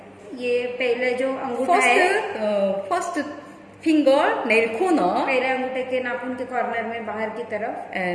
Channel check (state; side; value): identical; both; correlation 1.00